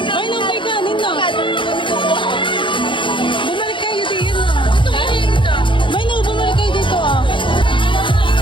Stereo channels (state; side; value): late; right; 0.24 ms